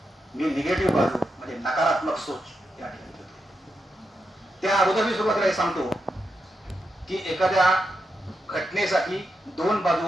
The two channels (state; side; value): normal; both; correlation 0.85